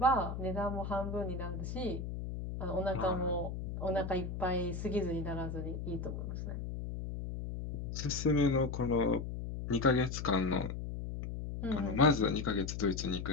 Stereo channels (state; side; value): noise; left; hum, 5 dB below the sound